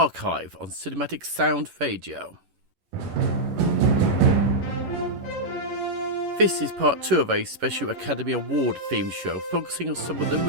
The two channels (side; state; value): left; late; 11 ms